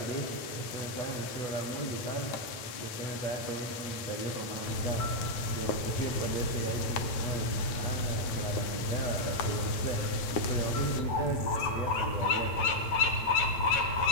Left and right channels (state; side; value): late; right; 9.4 ms